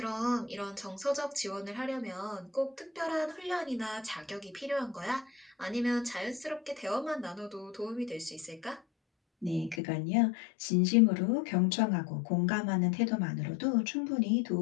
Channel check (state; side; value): drops out; right; at 9.8 s